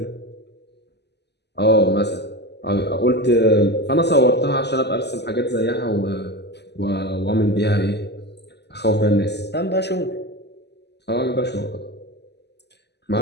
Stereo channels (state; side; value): late; right; 0.49 ms